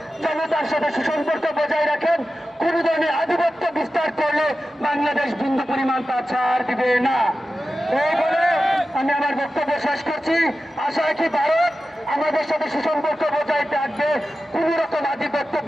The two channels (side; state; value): both; normal; correlation 0.93